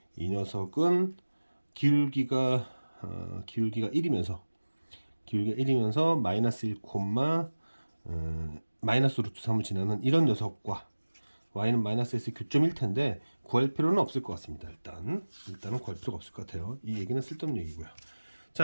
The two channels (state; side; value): inverted; both; correlation -1.00